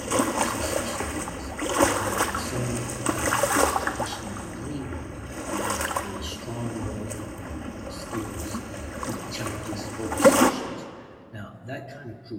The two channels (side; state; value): both; identical; correlation 1.00